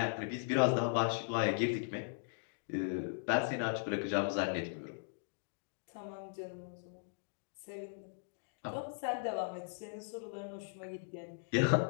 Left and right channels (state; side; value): silent; right; digital silence